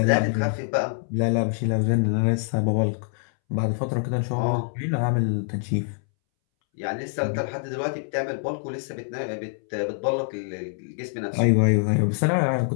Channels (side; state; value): right; silent; 62 dB below the other